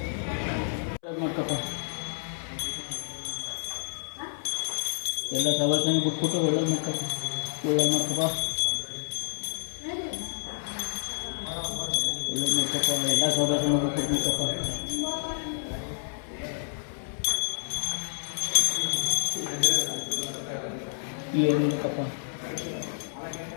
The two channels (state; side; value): silent; right; 59 dB below the other